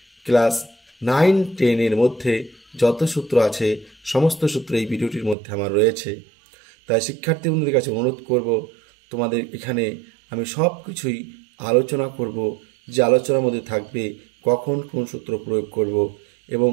ক্লাস 9-10 মধ্যে যত সূত্র আছে সমস্ত সূত্র এই ভিডিওটির মধ্যে আমার রয়েছে। তাই শিক্ষার্থী বন্ধুদের কাছে অনুরোধ করব, তোমাদের এখানে আমি সব কিছুই আলোচনা করব, যে আলোচনার মধ্যে থাকবে কখন কোন সূত্র প্রয়োগ করব এবং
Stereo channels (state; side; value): drops out; left; at 5.4 s